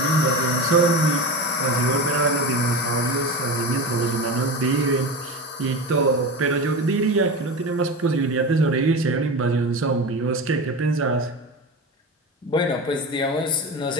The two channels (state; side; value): normal; both; correlation 0.26